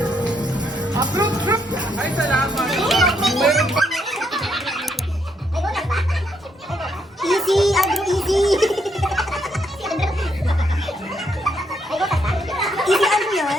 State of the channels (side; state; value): both; normal; correlation 0.75